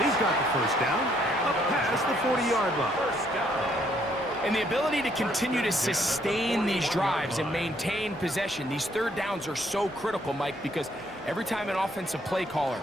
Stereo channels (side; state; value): both; normal; correlation 0.68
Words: He's got the first down. Up past the 40-yard line. First down. And the ability to continue to sustain these drives and maintain possession, these third downs are so critical, Mike, because every time an offensive play caller